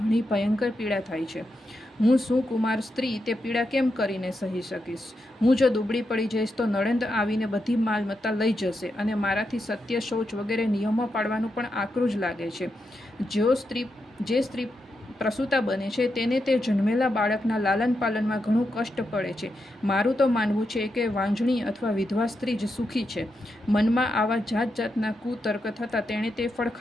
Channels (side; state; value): both; normal; correlation 0.85